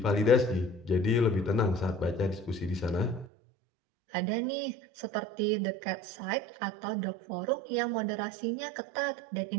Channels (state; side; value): drops out; left; at 3.2 s